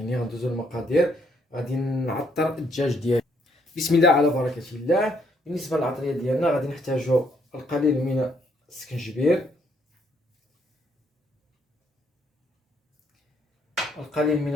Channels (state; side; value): normal; both; correlation 0.70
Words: غندوزو المقادير. غادي نعطر الدجاج ديالي. بسم الله على بركة الله. بالنسبة للعطرية ديالنا غادي نحتاجو القليل من السكنجبير، القليل من